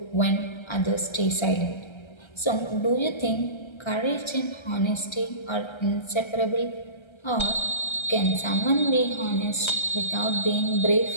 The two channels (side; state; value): right; late; 1.3 ms